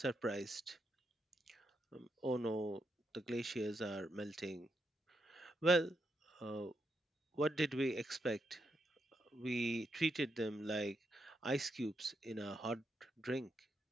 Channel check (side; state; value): both; normal; correlation 0.81